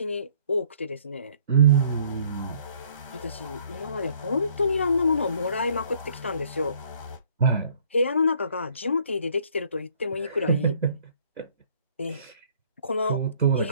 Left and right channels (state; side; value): inverted; both; correlation -0.60